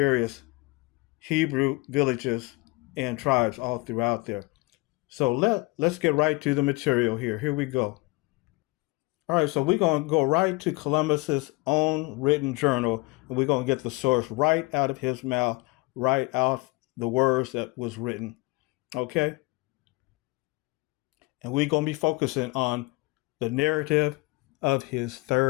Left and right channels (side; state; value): right; quieter; 24.7 dB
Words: Hebrew villages and tribes all throughout there. So let's get right to the material here. Here we go. All right, so we're going to go right to Columbus's own written journal, and we're going to get the source right out of his mouth, right out the words that was written. Okay? And we're going to be focusing on the narrative of his